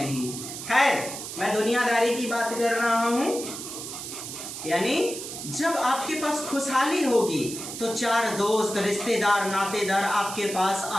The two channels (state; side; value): noise; right; hiss, 8 dB below the sound